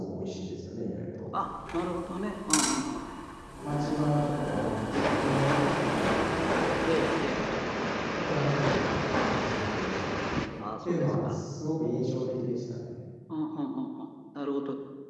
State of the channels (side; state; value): both; identical; correlation 1.00